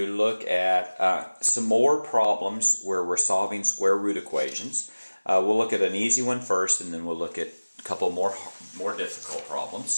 look at some more problems where we're solving square root equations. We'll look at an easy one first, and then we'll look at a couple more difficult problems.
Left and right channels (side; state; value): both; inverted; correlation -1.00